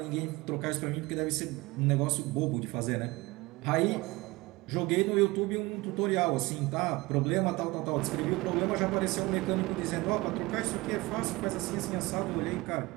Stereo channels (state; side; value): quieter; left; 22.0 dB